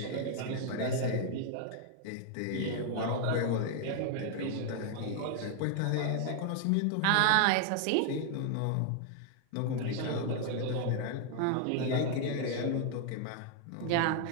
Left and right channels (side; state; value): both; different; correlation 0.00